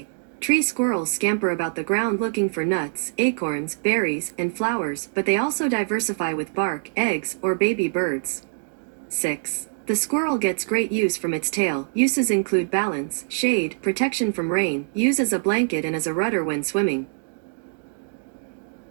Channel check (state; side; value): silent; left; digital silence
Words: tree squirrels scamper about the ground looking for nuts, acorns, berries, and flowers, but they also diversify with bark, eggs, or baby birds. 6. The squirrel gets great use from its tail. Uses include balance, shade, protection from rain, use as a blanket and as a rudder when swimming.